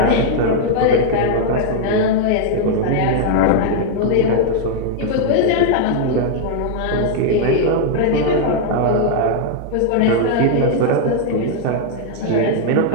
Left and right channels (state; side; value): different; both; correlation -0.01